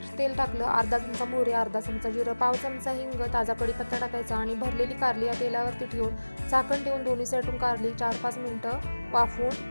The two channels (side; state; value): both; inverted; correlation -1.00